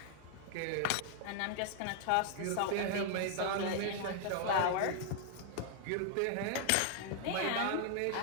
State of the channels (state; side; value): different; both; correlation 0.00